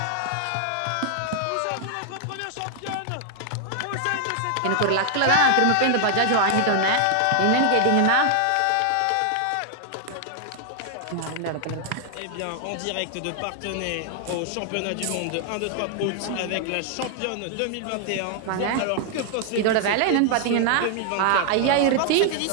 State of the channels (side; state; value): both; different; correlation 0.00